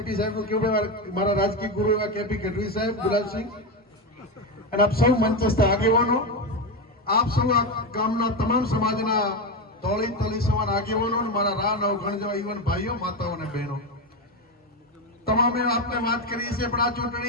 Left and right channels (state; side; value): normal; both; correlation 0.13